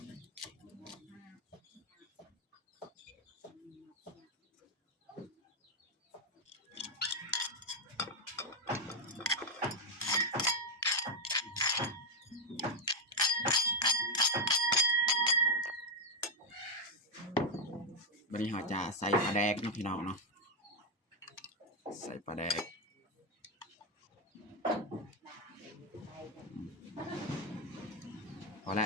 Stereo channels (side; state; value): both; normal; correlation 0.03